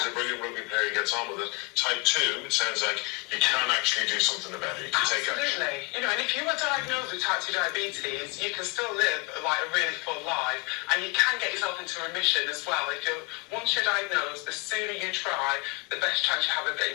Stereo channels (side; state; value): right; quieter; 28.1 dB